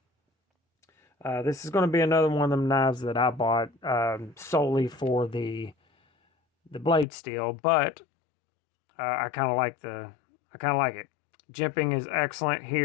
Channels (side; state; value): right; drops out; at 7.1 s